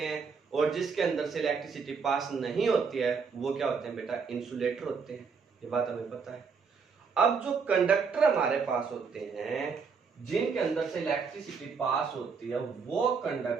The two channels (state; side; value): quieter; left; 5.5 dB